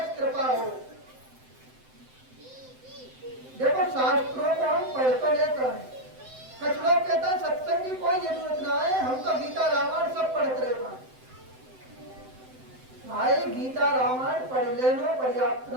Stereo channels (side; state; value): left; late; 7.8 ms